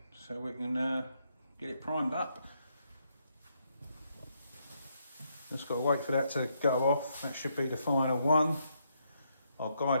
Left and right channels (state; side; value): inverted; both; correlation -0.76